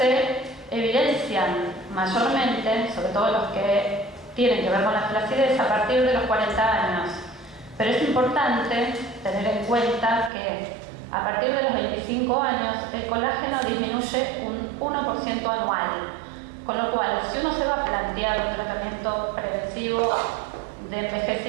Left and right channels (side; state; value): left; drops out; at 10.3 s